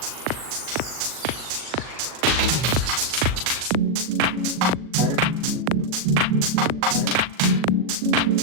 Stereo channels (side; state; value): left; late; 40 ms